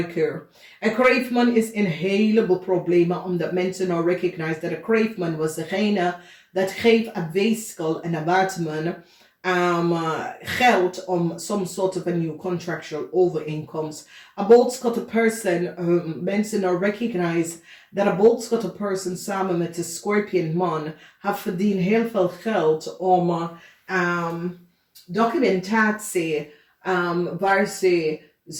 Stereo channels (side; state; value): both; identical; correlation 1.00